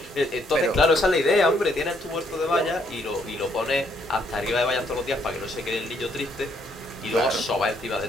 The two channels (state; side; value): normal; both; correlation 0.70